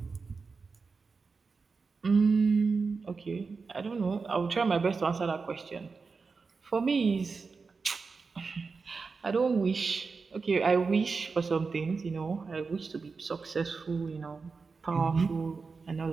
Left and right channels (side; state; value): left; quieter; 4.6 dB